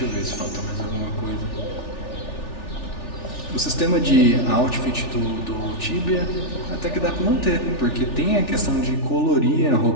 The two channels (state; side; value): late; right; 3.4 ms